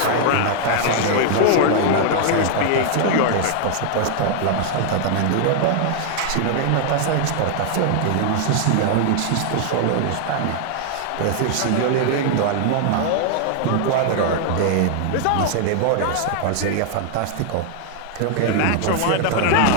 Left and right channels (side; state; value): both; different; correlation 0.00